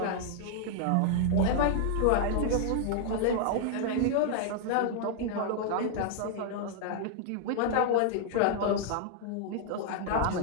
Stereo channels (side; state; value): both; different; correlation 0.00